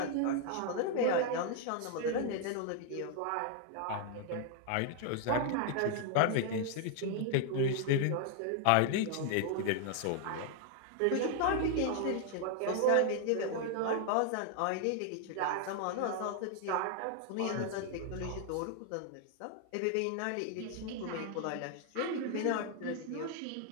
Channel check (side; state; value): both; different; correlation 0.00